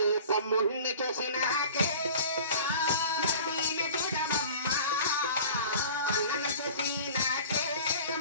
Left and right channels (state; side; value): inverted; both; correlation -0.42